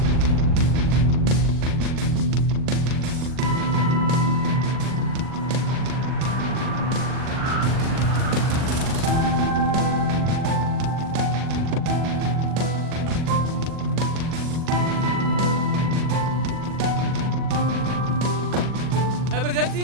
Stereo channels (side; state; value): left; late; 40 ms